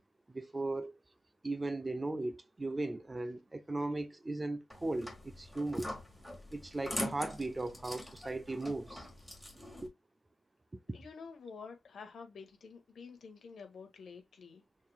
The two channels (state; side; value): normal; both; correlation 0.96